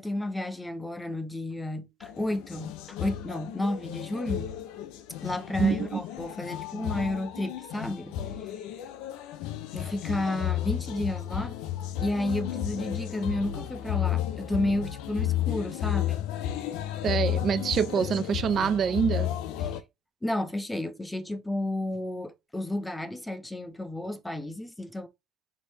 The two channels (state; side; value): normal; both; correlation 0.67